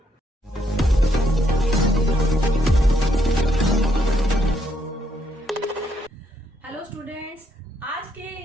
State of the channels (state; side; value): normal; both; correlation 0.74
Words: Hello students, आज के